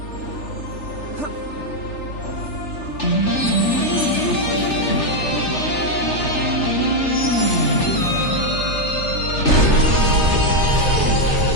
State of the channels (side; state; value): right; late; 3.4 ms